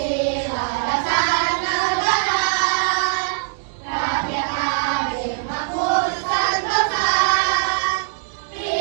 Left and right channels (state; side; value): silent; left; digital silence